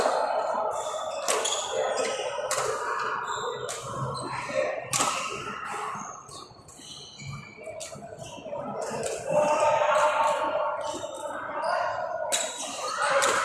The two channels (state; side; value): identical; both; correlation 1.00